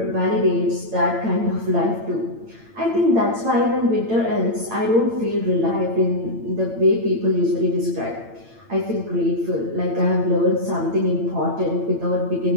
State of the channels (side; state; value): left; late; 8.8 ms